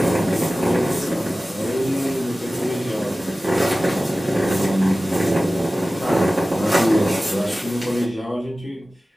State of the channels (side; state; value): both; normal; correlation 0.96